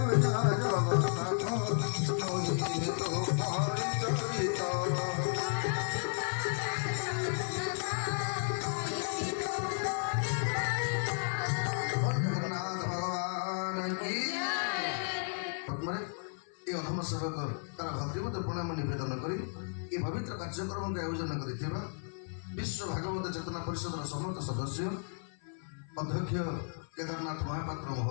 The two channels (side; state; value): right; silent; 55 dB below the other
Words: सेवक तार भक्तिमत प्रणाम निवेदन करी ये पवित्र कार्यक्रम के आयोजन करिथिबा विश्व भागवत चेतना परिषद समस्त सदस्य अध्यक्ष केदारनाथ महापात्र